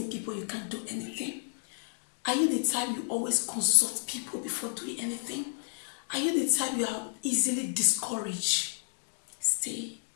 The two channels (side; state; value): right; silent; digital silence